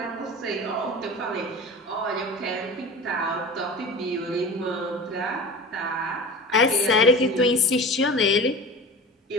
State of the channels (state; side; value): normal; both; correlation 0.34